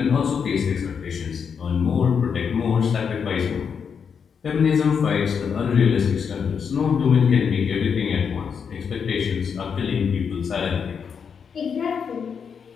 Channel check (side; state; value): right; quieter; 6.7 dB